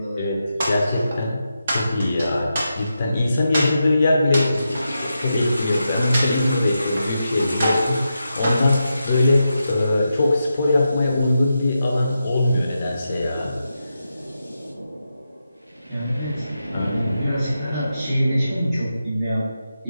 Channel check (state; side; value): inverted; both; correlation -0.87